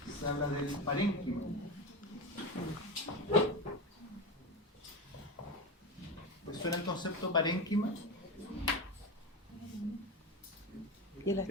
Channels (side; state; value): both; normal; correlation 0.19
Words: se habla del parénquima. ¿Les suena el concepto parénquima? Y el